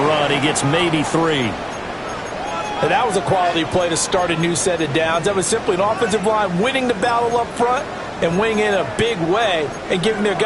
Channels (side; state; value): both; identical; correlation 1.00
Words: run. He gets maybe 3. And that was a quality play to start a new set of downs. That was simply an offensive line winning the battle up front and winning in a big way and giving their